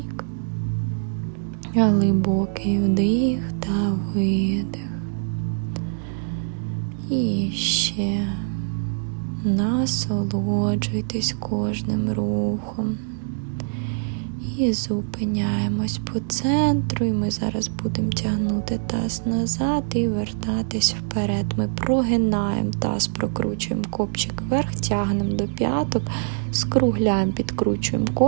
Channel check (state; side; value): silent; left; digital silence